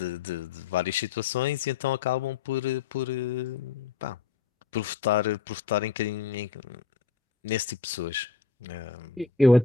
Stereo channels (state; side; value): quieter; right; 5.0 dB